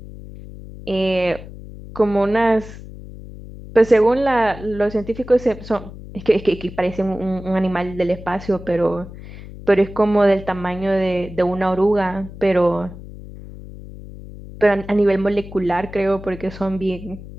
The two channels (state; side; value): noise; left; hum, 14 dB below the sound